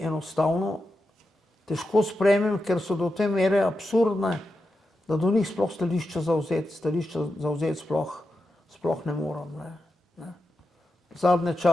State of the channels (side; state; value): both; normal; correlation 0.89